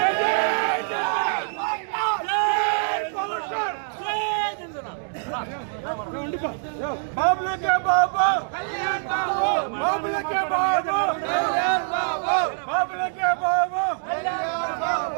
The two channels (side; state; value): left; silent; 62 dB below the other